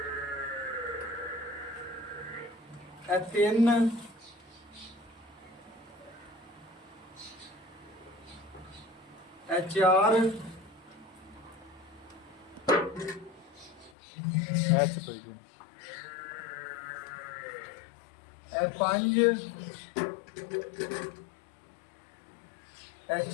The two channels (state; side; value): drops out; right; at 13.9 s